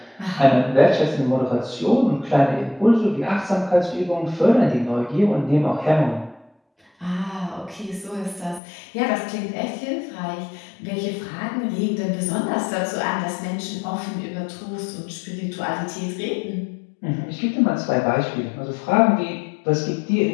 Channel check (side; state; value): right; drops out; at 8.6 s